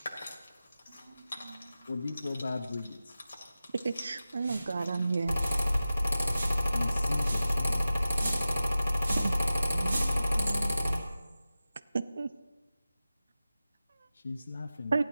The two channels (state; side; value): inverted; both; correlation -0.95